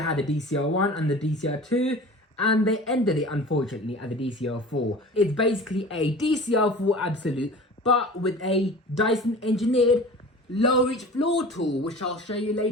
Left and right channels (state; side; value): normal; both; correlation 0.39